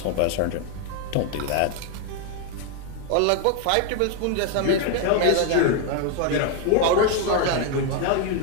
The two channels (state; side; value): different; both; correlation 0.01